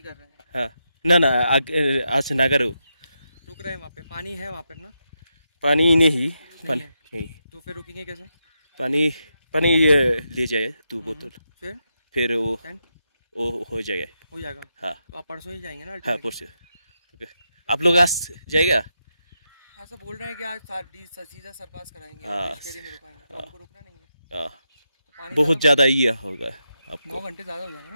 कर रहे हैं? हाँ ना ना आज से नागारो रुक रहे हैं वहाँ पे, पानी है वहाँ पे ना? पानी नहीं पानी है। नहीं तो फिर रुकेंगे कैसे? पानी पानी ले जाए 2 बोतल फिर टेंट वो हो जाएगा। हो जाएगा। हाँ तो आप परसों ही जाएंगे ना? हाँ परसों। आप लोग आज जाएगा? ऐसा बोल रहे हैं कि आज सीधा सरपास कराएंगे, हाँ। फेरी में रुकाएंगे, तो हमको रुकना नहीं है। हाँ तो पानी बहुत ज़्यादा ही होगा 9 आपको। घंटे ज़्यादा हो जाएगा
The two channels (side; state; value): both; inverted; correlation -0.85